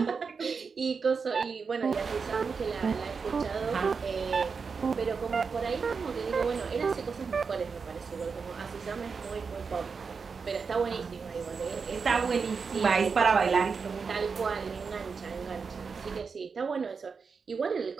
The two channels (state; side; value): quieter; left; 5.3 dB